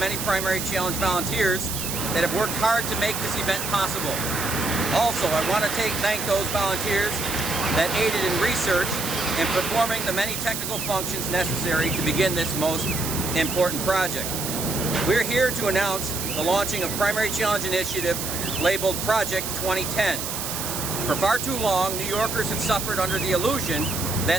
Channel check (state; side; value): noise; right; hiss, 4 dB below the sound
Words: Primary Challenge volunteers that have worked hard to make this event possible. Also, I want to thank those volunteers that aided in research and performing the many technical functions necessary to begin this most important project. We're here to announce the launching of Primary Challenge Initiative labeled Project 2010. For far too long, New Yorkers have suffered under the illusion